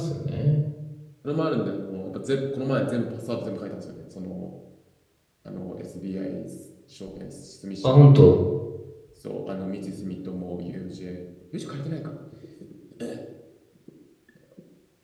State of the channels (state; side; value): identical; both; correlation 1.00